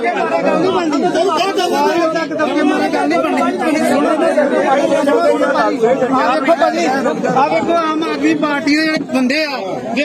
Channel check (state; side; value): identical; both; correlation 1.00